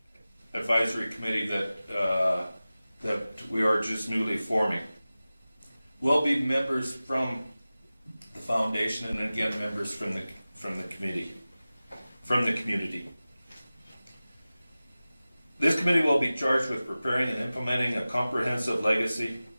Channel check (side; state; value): both; inverted; correlation -0.96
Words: Advisory Committee that we are just newly forming will be members from the foundation, and again members from the community. This committee will be charged with preparing and implementing a comprehensive legacy